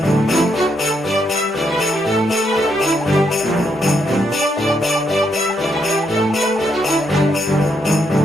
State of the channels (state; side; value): normal; both; correlation 0.77